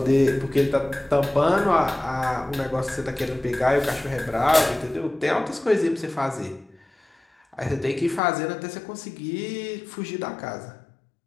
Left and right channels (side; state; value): right; drops out; at 8.2 s